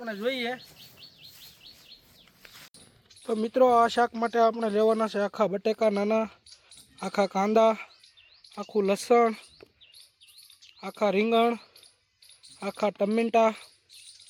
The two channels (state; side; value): identical; both; correlation 1.00